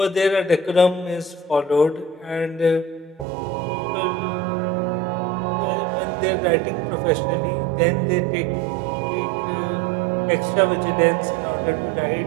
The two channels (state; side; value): drops out; left; at 3.2 s